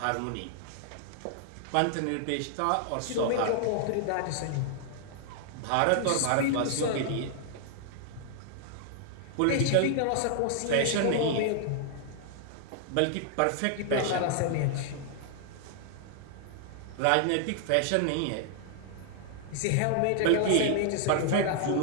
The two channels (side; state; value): both; different; correlation -0.01